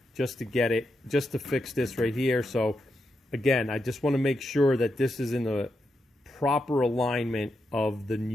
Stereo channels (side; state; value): both; normal; correlation 0.85